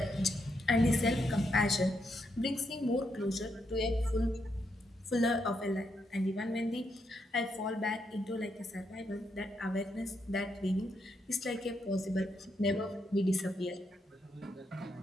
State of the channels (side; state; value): both; normal; correlation 0.79